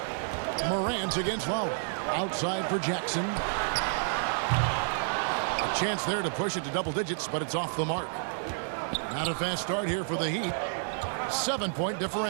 Morant against Lowry. Outside for Jackson. A chance there to push it to double digits, but it's off the mark. Not a fast start here for the Heat. 7-point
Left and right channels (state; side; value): silent; left; digital silence